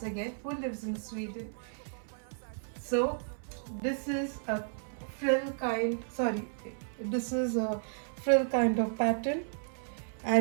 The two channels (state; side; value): silent; left; 56 dB below the other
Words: again who lives in Sweden. So this is a this is a frill kind of pattern